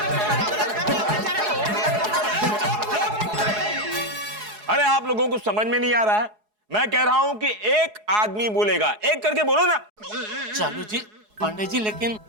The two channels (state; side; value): late; left; 4.7 ms